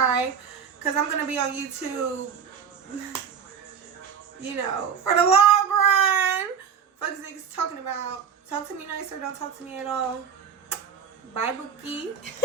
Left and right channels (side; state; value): left; quieter; 7.2 dB